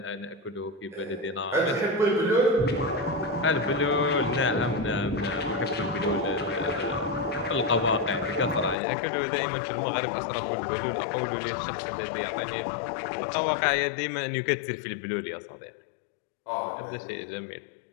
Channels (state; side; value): drops out; right; at 8.8 s